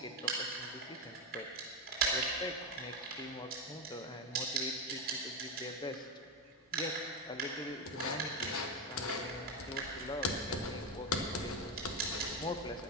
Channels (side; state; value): both; normal; correlation 0.11